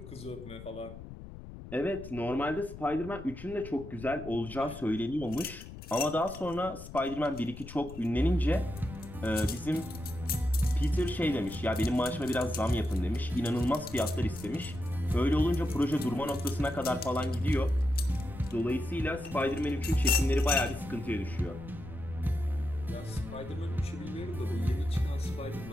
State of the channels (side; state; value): left; noise; rumble, 13 dB below the sound